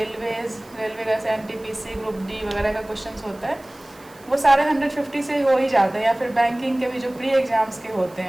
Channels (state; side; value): noise; right; hiss, 26 dB below the sound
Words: का एनटीपीसी, ग्रुप डी वगैरह का क्वेश्चंस होता है वो सारे 150 से हो ही जाते हैं। या फिर बैंकिंग के भी जो प्री एग्ज़ाम्स के होते